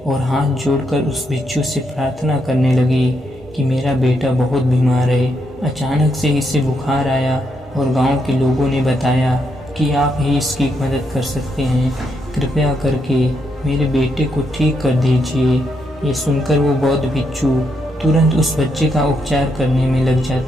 और हाथ जोड़कर उस भिक्षु से प्रार्थना करने लगी कि मेरा बेटा बहुत बीमार है, अचानक से इसे बुखार आया और गांव के लोगों ने बताया कि आप ही इसकी मदद कर सकते हैं, कृपया करके मेरे बेटे को ठीक कर दीजिए। ये सुनकर वो बौद्ध भिक्षु तुरंत उस बच्चे का उपचार करने में लग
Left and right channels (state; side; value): normal; both; correlation 0.79